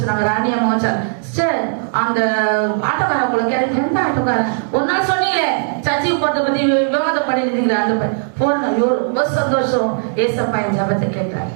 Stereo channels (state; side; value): silent; left; digital silence